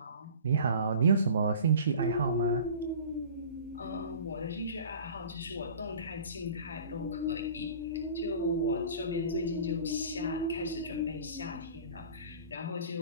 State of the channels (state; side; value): inverted; both; correlation -0.42